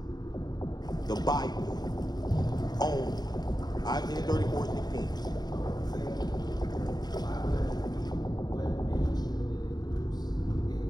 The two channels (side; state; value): right; late; 0.20 ms